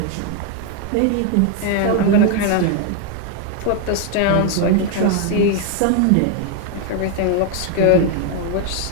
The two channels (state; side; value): different; both; correlation 0.00